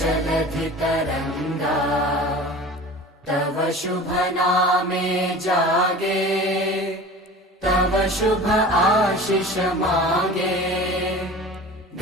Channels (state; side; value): normal; both; correlation 0.39